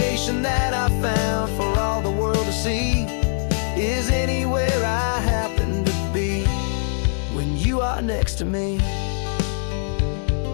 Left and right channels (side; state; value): right; silent; 64 dB below the other